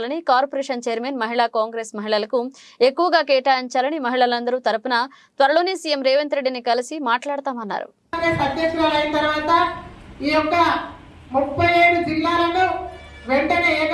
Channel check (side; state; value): both; identical; correlation 1.00